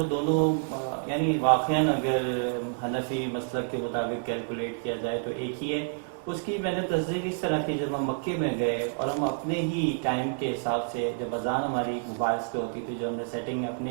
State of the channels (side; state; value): left; silent; digital silence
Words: دونوں یعنی واقعاً اگر حنفی مسلک کے مطابق کیلکولیٹ کیا جائے تو ایک ہی ہے. اس کی میں نے تصدیق اس طرح کی، جب ہم مکے میں گئے اور ہم اپنے ہی ٹائم کے حساب سے، جب اذان ہماری موبائلز پہ ہوتی تھی، جو ہم نے سیٹنگ